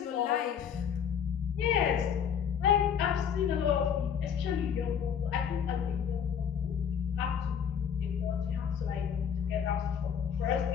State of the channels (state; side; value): quieter; right; 7.9 dB